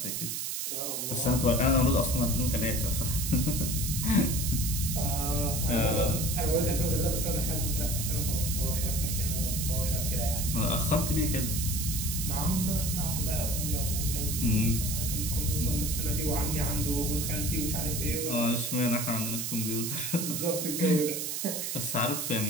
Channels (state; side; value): noise; right; hiss, 2 dB below the sound